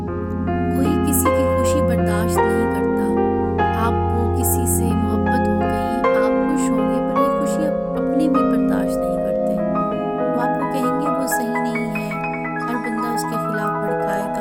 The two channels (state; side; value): identical; both; correlation 1.00